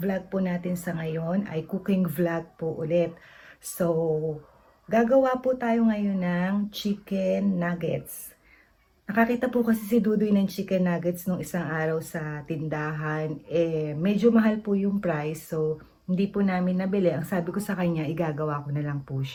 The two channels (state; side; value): identical; both; correlation 1.00